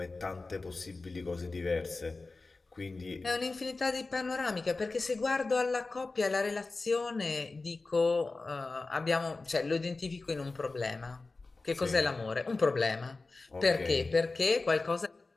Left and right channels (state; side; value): quieter; right; 3.6 dB